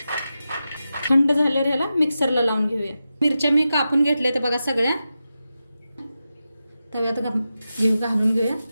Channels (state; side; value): inverted; both; correlation -0.91